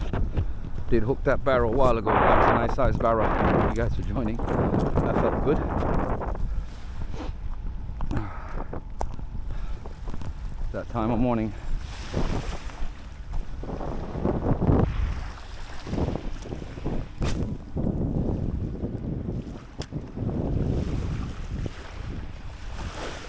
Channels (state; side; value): identical; both; correlation 1.00